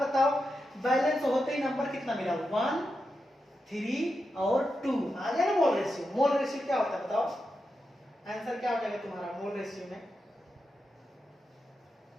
बताओ बैलेंस होते ही नंबर कितना मिला 1 3 और 2 आ गया ना मोल रेशियो। मोल रेशियो क्या होता है बताओ, आंसर क्या हो जाएगा तुम्हारा मोल रेशियो में।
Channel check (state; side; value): normal; both; correlation 0.88